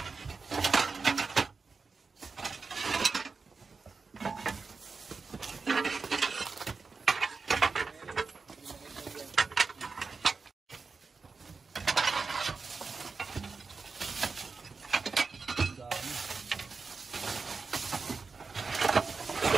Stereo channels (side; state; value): left; quieter; 4.6 dB